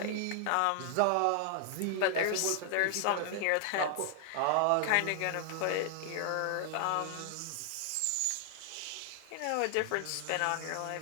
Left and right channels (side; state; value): both; different; correlation 0.00